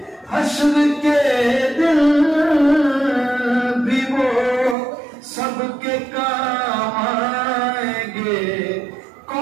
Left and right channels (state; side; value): drops out; left; at 4.8 s